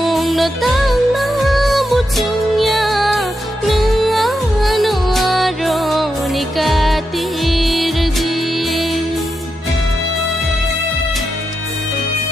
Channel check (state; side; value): normal; both; correlation 0.86